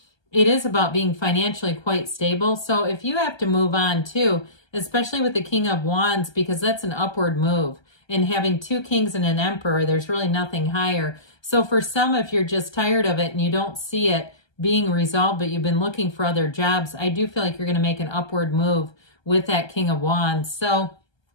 it is about being financially quite stable. So if you have to move on too, especially with the King of Wands, because that's an upward move. And having 2 kings and an emperor, there's really nothing higher. So for some, if you're just tired of it and you don't see it being resolved, but you've been looking for other jobs, I do feel like you're going to make an upward move with that King of Wands. So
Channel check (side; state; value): right; late; 1.3 ms